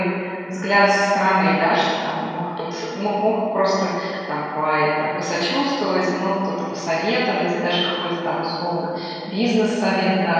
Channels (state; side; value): identical; both; correlation 1.00